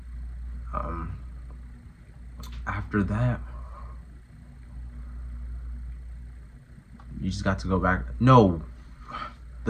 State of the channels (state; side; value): identical; both; correlation 1.00